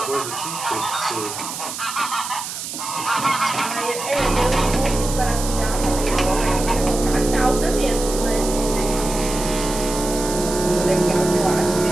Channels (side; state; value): right; noise; hiss, 7 dB below the sound